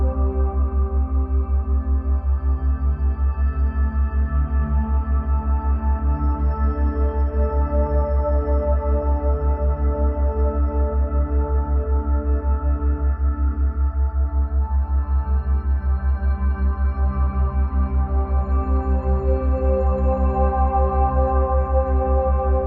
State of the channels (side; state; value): both; identical; correlation 1.00